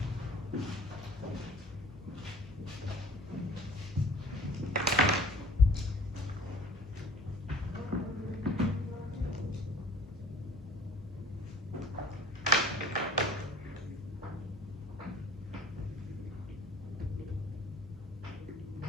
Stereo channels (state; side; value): normal; both; correlation 0.49